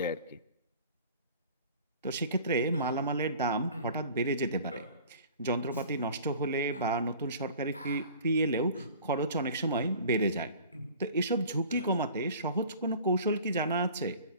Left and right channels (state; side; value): inverted; both; correlation -0.45